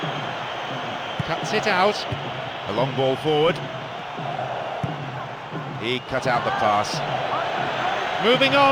Cuts it out. A long ball forward. He cut out the pass. Moving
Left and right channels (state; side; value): identical; both; correlation 1.00